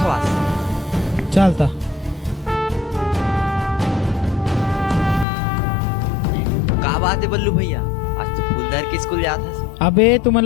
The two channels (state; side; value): drops out; right; at 5.2 s